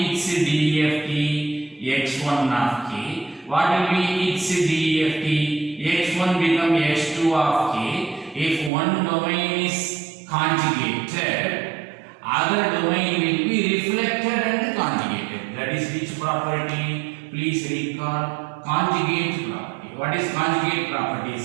its DFT x1 of k? What will be its DFT? x1 become x2 of k. If one domain is conjugated, other domain will be reflected and conjugated. That is which property? Please recall conjugate property. What is conjugate property? It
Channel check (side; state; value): left; drops out; at 8.7 s